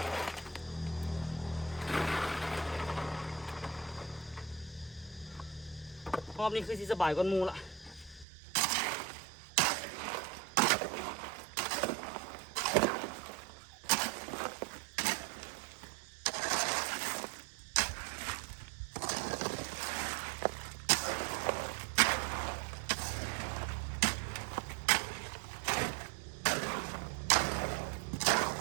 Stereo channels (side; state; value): left; drops out; at 8.2 s